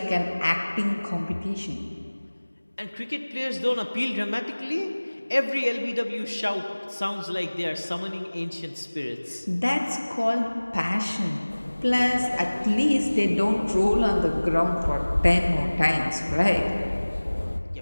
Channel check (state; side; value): inverted; both; correlation -1.00